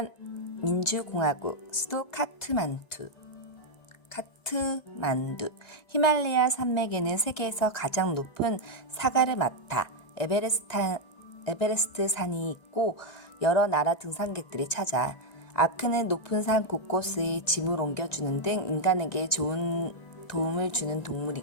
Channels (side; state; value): right; late; 1.9 ms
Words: 민주공화국. 수도 카트만두. 히말라야 산맥에는 세계에서 가장 높은 사가르마타 에베레스트 산이 있고 여러 나라 등산객들이 찾아. 아크는 높은 산 곳곳의 짐을 옮겨주는 등 인간에게 좋은 도움을 주는